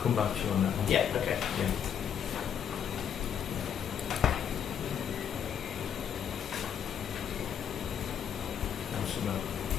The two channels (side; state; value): right; quieter; 8.5 dB